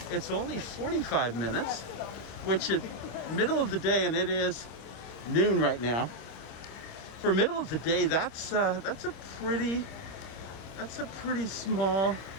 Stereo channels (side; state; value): right; late; 26 ms